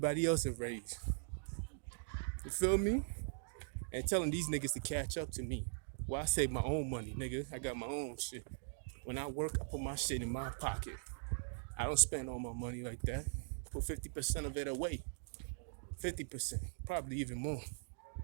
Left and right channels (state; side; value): silent; left; digital silence